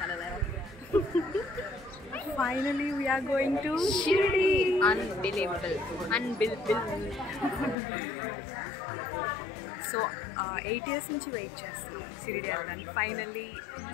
Finally we are going to Shirdi. Unbelievable. So 8 years నుంచి వెయిట్ చేస్తున్నాం షిరిడి వెళ్ళడానికి. ఫైనల్లీ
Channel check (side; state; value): right; drops out; at 7.8 s